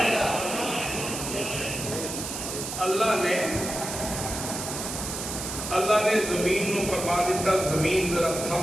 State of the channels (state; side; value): noise; right; hiss, 6 dB below the sound